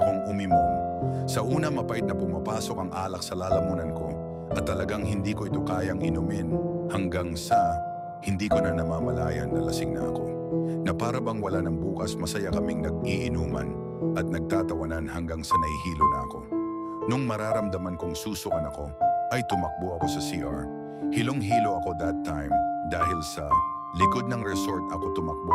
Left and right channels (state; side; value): identical; both; correlation 1.00